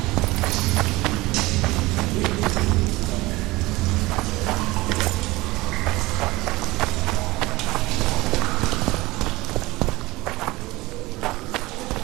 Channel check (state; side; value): quieter; left; 20.5 dB